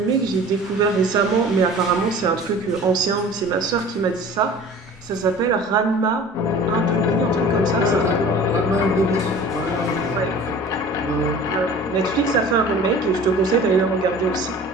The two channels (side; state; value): both; normal; correlation 0.43